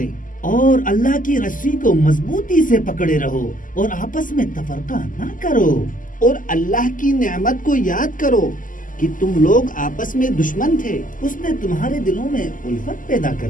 اور اللہ کی رسی کو مضبوطی سے پکڑے رہو اور آپس میں تفرقہ نہ کرو، اور اللہ کی نعمت کو یاد کرو کہ تم لوگ آپس میں دشمن تھے، اس نے تمہارے دلوں میں الفت پیدا کر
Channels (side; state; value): right; late; 0.38 ms